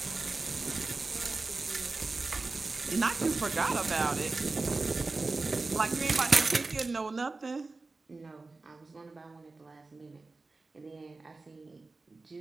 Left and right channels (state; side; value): quieter; left; 3.6 dB